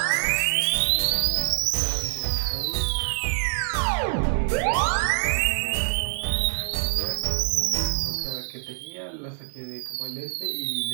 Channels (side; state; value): left; silent; digital silence